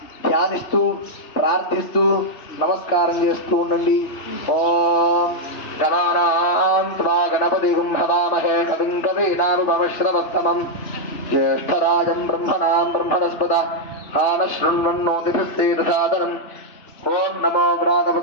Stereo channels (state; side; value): late; right; 3.4 ms